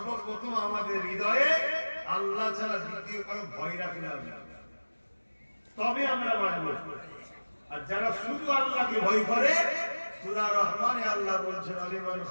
আমাদের হৃদয়ে আল্লাহ ছাড়া দ্বিতীয় কারো ভয় রাখলে হবে। তবে আমরা মানব। আর যারা শুধু আল্লাহকে ভয় করে, সূরা রহমানে আল্লাহ বলছেন আলিমান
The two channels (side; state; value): both; inverted; correlation -1.00